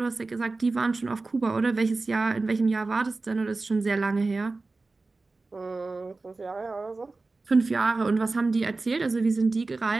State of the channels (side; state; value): left; quieter; 3.6 dB